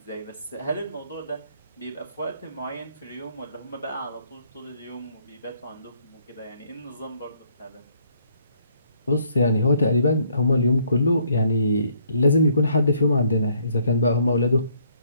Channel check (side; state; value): both; inverted; correlation -0.66